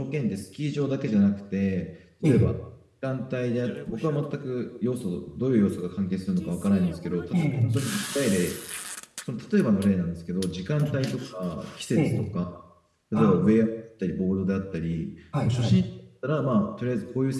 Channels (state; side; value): identical; both; correlation 1.00